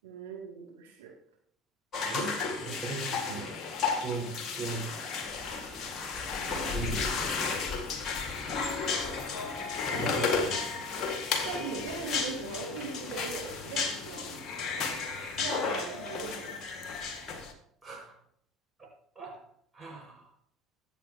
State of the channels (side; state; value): right; quieter; 3.1 dB